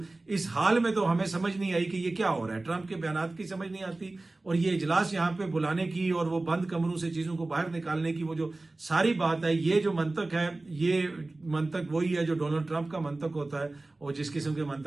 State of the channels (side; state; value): left; quieter; 3.0 dB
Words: इस हाल में तो हमें समझ नहीं आई कि ये क्या हो रहा है। ट्रंप के बयानात की समझ नहीं आती, और ये इजलास यहाँ पे बुलाने की और वो बंद कमरों से चीजों को बाहर निकालने की वो जो सारी बात है, ये जो मंतक है, ये मंतक वही है जो डोनाल्ड ट्रंप का मंतक होता है और जिस किस्म के